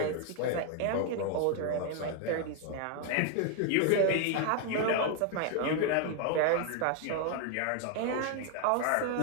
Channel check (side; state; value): both; different; correlation 0.01